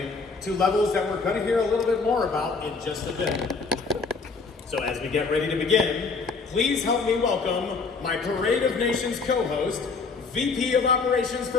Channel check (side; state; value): right; quieter; 4.5 dB